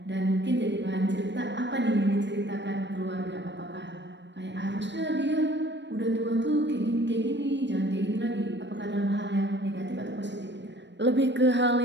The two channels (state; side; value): late; left; 0.52 ms